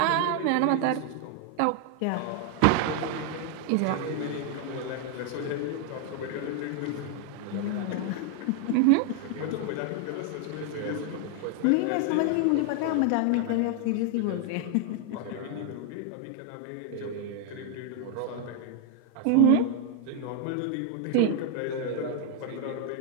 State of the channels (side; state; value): both; different; correlation 0.00